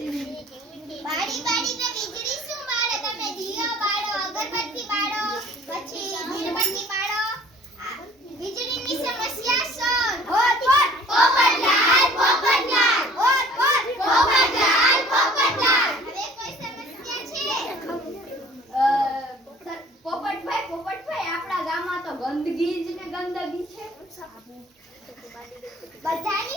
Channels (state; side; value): normal; both; correlation 0.52